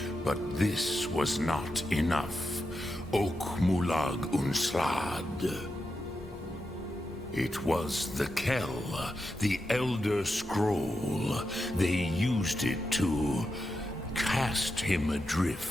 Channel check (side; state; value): both; normal; correlation 0.87